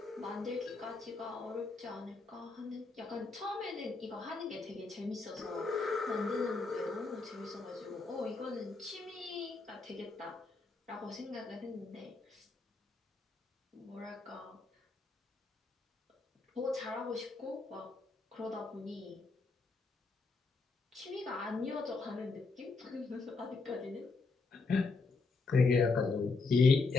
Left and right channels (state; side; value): quieter; right; 3.9 dB